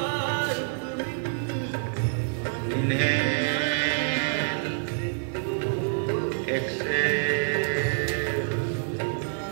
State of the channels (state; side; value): silent; left; 55 dB below the other